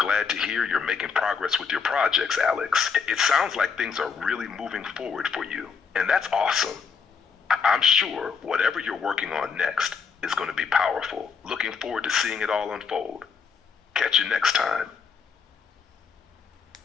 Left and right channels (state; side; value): quieter; right; 5.8 dB